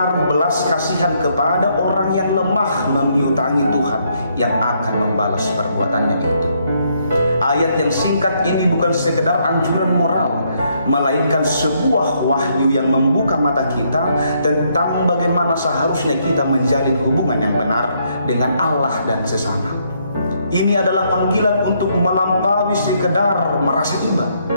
belas kasihan kepada orang yang lemah, memiutangi Tuhan yang akan membalas perbuatannya itu. Ayat yang singkat ini bukan sekedar anjuran moral, melainkan sebuah wahyu yang membuka mata kita tentang bagaimana seharusnya kita menjalin hubungan yang benar dengan Allah dan sesama. Ini adalah panggilan untuk melampaui sekedar merasa iba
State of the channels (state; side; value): inverted; both; correlation -0.73